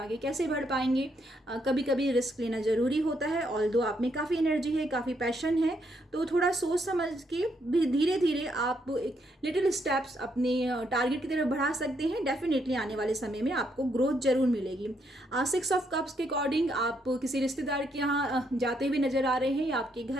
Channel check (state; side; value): normal; both; correlation 0.75